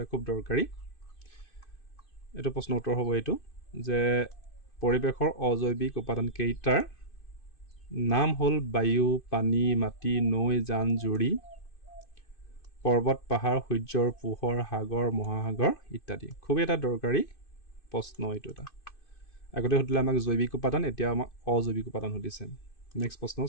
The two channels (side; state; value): right; late; 2.5 ms